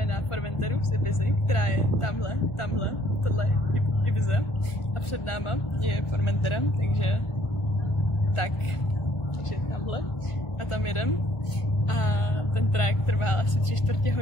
na Formenteru z Ibizy, která je tamhle, tohle je Ibiza a před náma je Formentera, takže tamhle a tam jedem a ten trajekt trval asi 3/4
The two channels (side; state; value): right; late; 1.4 ms